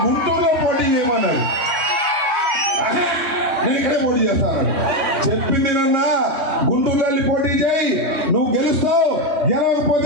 గుంటూరులో పోటీ చేయమన్నాడు. నేను ఇక్కడే పోటీ చేస్తాను చెప్పింది నన్నా, గుంటూరులో వెళ్ళి పోటీ చేయి, నువ్వు గెలుస్తావు,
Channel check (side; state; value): left; late; 3.2 ms